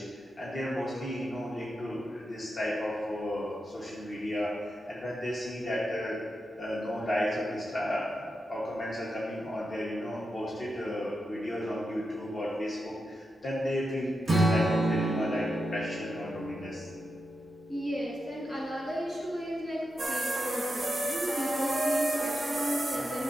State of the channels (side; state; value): both; normal; correlation 0.88